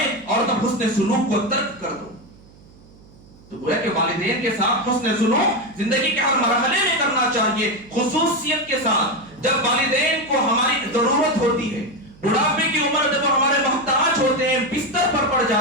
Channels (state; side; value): noise; right; hum, 25 dB below the sound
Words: اور تب حسن سلوک کو ترک کر دو۔ تو گویا کہ والدین کے ساتھ حسن سلوک زندگی کے ہر مرحلے میں کرنا چاہیے، خصوصیت کے ساتھ جب والدین کو ہماری ضرورت ہوتی ہے، بڑھاپے کی عمر جب ہمارے محتاج ہوتے ہیں، بستر پر پڑ